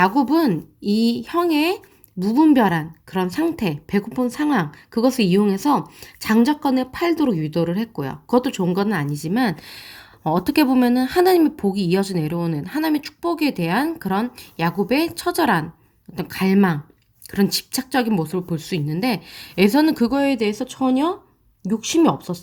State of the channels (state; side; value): identical; both; correlation 1.00